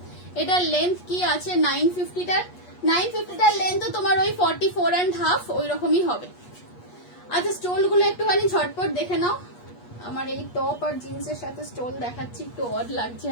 এটার লেন্থ কি আছে 950টার লেন্থ তো তোমার ওই 44.5 ওই রকমই হবে। আচ্ছা স্টোল গুলো একটুখানি ঝটপট দেখে নাও। আমার এই টপ আর জিন্সের সাথে স্টোল দেখাচ্ছি, একটু অড লাগছে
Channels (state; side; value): late; right; 8.3 ms